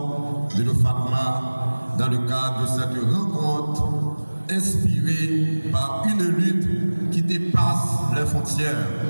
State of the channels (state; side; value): inverted; both; correlation -1.00